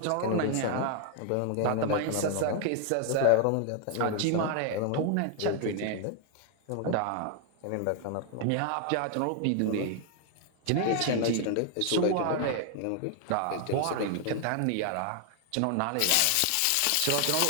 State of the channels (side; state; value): both; different; correlation 0.00